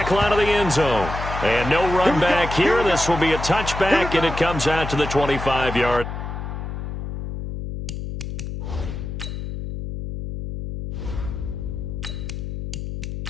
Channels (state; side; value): noise; left; hum, 6 dB below the sound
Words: line of the end zone. And no run back here. This will be a touchback, and it comes out to the 25-yard.